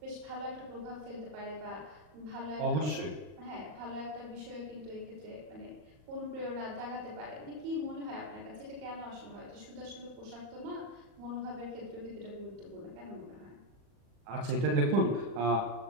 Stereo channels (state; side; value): late; left; 40 ms